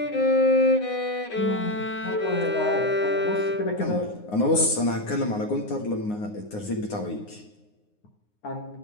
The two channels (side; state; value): right; late; 9.6 ms